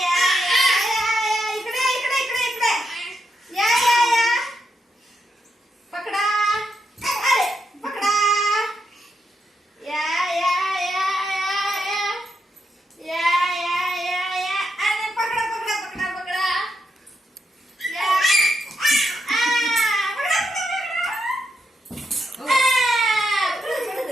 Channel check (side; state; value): both; normal; correlation 0.82